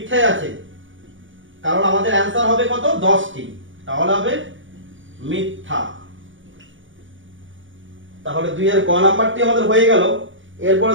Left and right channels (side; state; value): left; late; 0.56 ms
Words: আছে, কারণ আমাদের অ্যান্সার হবে কত? 10টি। তাহলে হবে মিথ্যা। তাহলে 2 এর গ নাম্বারটি আমাদের হয়ে গেল। এরপরে